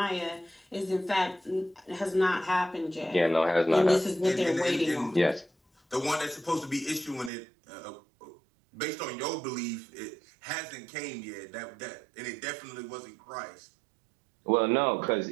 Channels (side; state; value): left; drops out; at 7.3 s